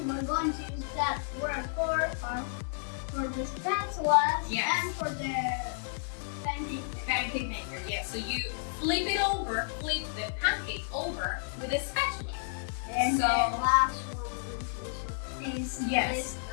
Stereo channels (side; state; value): right; silent; 57 dB below the other